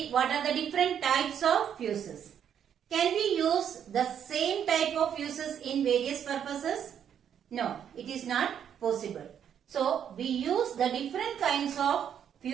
what are the different types of fuses. Can we use the same type of fuses in various purposes? No, it is not possible. So we use the different kinds of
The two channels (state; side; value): quieter; left; 8.8 dB